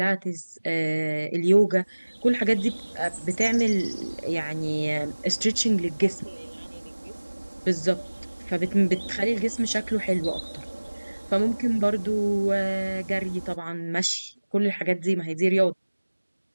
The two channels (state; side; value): inverted; both; correlation -1.00